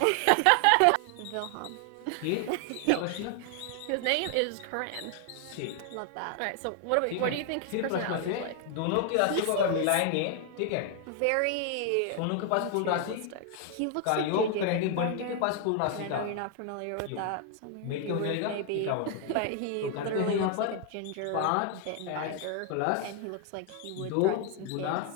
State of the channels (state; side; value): different; both; correlation 0.00